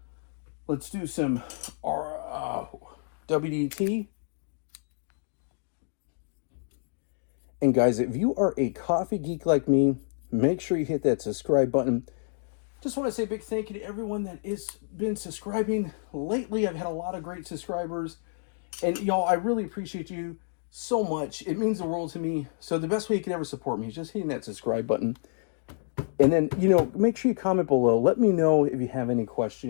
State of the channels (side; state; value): right; silent; digital silence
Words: Let's do some WDT. And guys, if you are a coffee geek like me, make sure you hit that subscribe button. Just want to say a big thank you to everyone that has been subscribing lately. I've had a lot of great subscribers. And y'all, I really appreciate you so much. It means the world to me. So the best way you can ever support me is just hitting that subscribe button. And then, make sure you comment below. Let me know if you have any